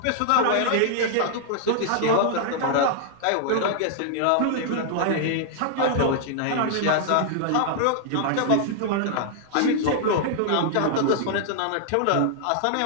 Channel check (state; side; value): different; both; correlation -0.01